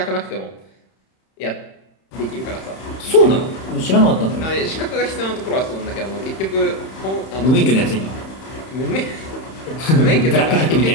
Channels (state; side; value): late; right; 31 ms